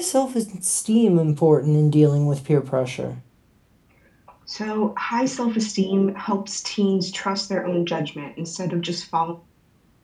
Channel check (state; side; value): identical; both; correlation 1.00